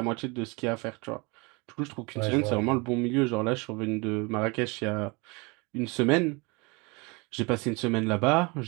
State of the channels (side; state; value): left; quieter; 28.0 dB